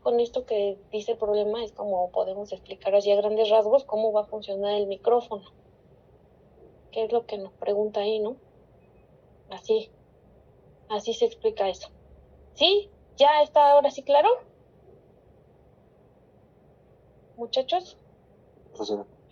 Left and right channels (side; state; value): both; identical; correlation 1.00